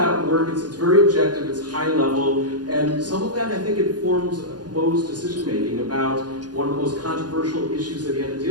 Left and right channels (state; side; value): late; left; 0.69 ms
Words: work, it's very objective, it's high level, and some of that I think informs Mo's decision making about one of the most controversial issues that he had to